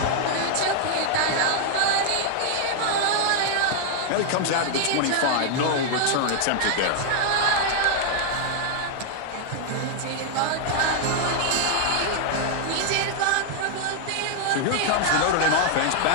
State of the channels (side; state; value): both; different; correlation 0.00